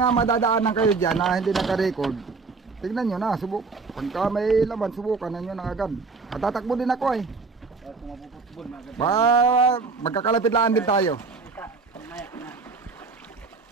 madadaanan kayo dyan na hindi naka-record, tignan nyo na, subok. Pagka may laman, subukan na nyo na agad. At tatakbo din ako eh. Kung mapuputbol, maganda. Ba, magkakalapit-laan din tayo. Mamaya na.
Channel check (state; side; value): quieter; left; 4.4 dB